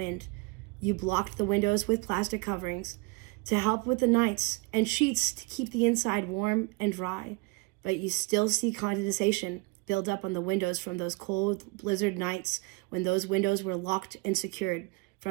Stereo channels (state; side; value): quieter; left; 26.4 dB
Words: You blocked the windows with plastic coverings to help with the nights and sheets to keep the inside warm and dry. But you still see condensation build up on the windows from those cold blizzard nights when those windows were locked and secured